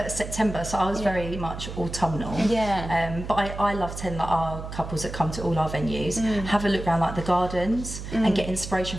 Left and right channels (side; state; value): right; noise; hum, 9 dB below the sound